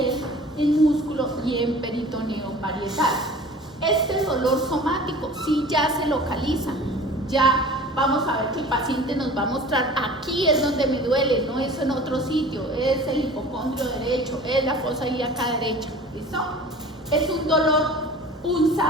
en músculo y en peritoneo parietal. Este dolor somático sí ya se localiza, ya vamos a ver que el paciente nos va a mostrar aquí es donde me duele, no es en otro sitio, es el hipocondrio derecho, es la fosa ilíaca derecha, ¿listo? Es un dolor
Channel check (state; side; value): normal; both; correlation 0.43